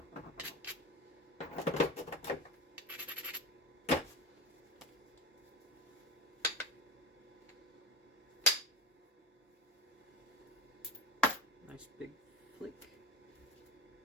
Nice big flick.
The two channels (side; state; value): both; normal; correlation 0.28